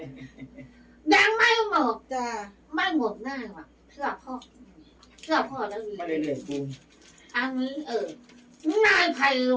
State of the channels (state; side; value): identical; both; correlation 1.00